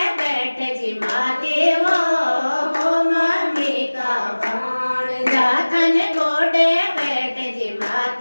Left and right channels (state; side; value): inverted; both; correlation -1.00